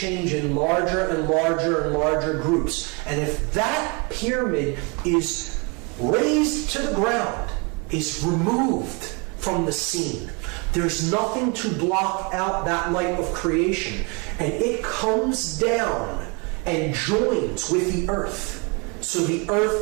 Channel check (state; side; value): quieter; left; 31.1 dB